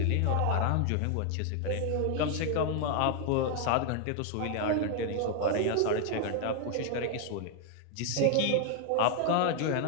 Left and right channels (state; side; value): different; both; correlation 0.00